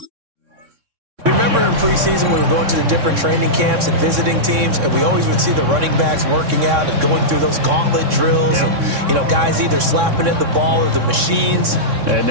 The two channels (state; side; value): late; left; 3.6 ms